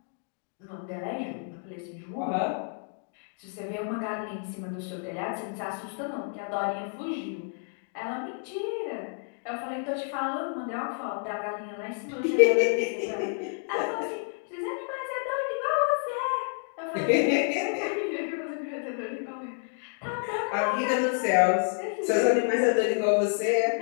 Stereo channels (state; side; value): silent; right; 58 dB below the other